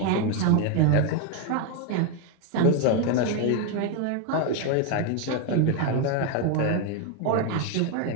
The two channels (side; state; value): both; different; correlation 0.01